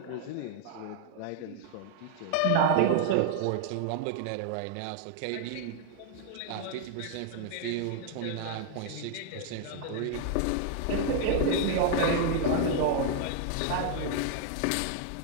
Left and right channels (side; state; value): both; different; correlation 0.00